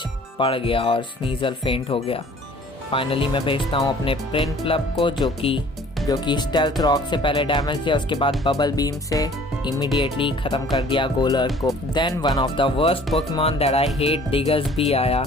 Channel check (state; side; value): normal; both; correlation 0.52